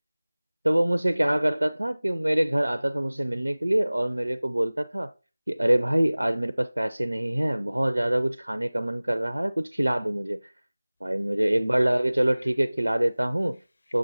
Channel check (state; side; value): inverted; both; correlation -0.99